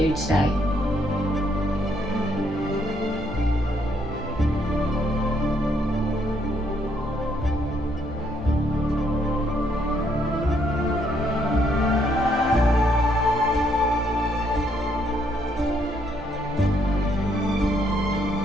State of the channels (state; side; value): normal; both; correlation 0.71